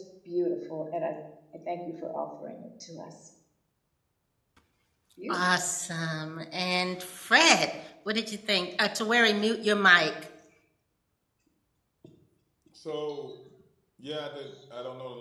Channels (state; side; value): identical; both; correlation 1.00